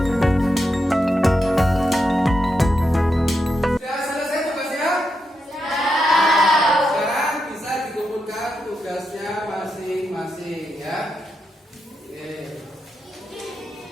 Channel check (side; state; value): both; normal; correlation 0.85